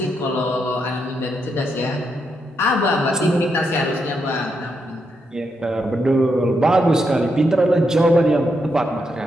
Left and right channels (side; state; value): both; normal; correlation 0.81